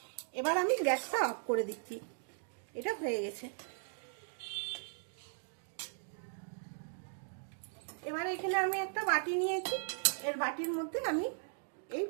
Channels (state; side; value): silent; left; digital silence